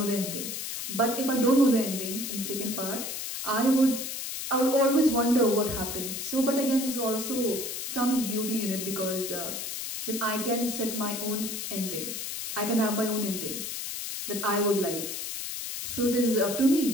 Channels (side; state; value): left; noise; hiss, 5 dB below the sound